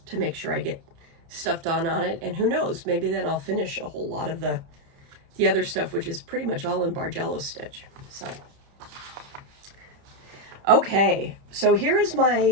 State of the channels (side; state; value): left; late; 30 ms